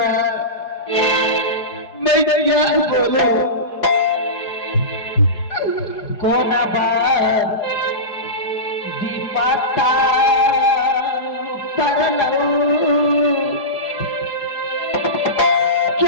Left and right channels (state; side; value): late; right; 4.8 ms